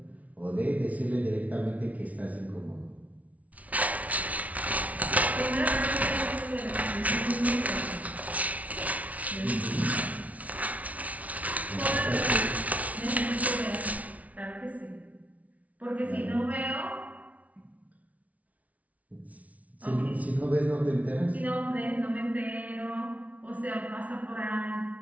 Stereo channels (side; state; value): left; late; 0.069 ms